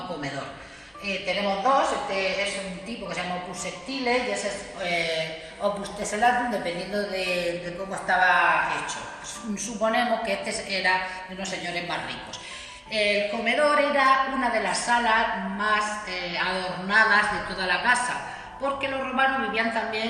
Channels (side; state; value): both; identical; correlation 1.00